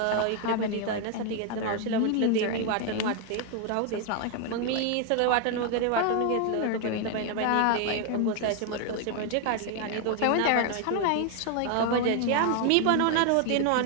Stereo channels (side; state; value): both; different; correlation 0.01